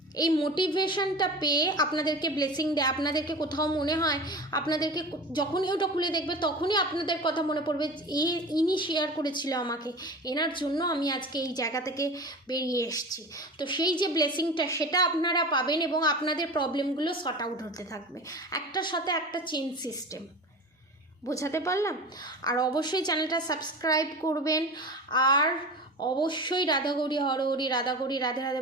এই মোটিভেশনটা পেয়ে আপনাদেরকে ব্লেসিং দেয়। আপনাদেরকে কোথাও মনে হয়, আপনাদেরকে যখনই ওটা খুলে দেখবে তখনই আপনাদের কথা মনে পড়বে, ইনি শেয়ার করেছিল আমাকে, এনার জন্য আমি আজকে এই জায়গা থেকে বেরিয়ে এসেছি। তো সেই যে ব্লেসিংটা, সেটা আপনারা পাবেন এবং আপনাদের প্রবলেমগুলো সর্ট আউট হতে থাকবে, একটার সাথে একটা চেইন সিস্টেম। বোঝাতে পারলাম? আর অবশ্যই চ্যানেলটা সাবস্ক্রাইব করবেন, আর অবশ্যই রাধাগৌরী হরহরি, রাধাগৌরী রাধে রাধে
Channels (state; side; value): normal; both; correlation 0.33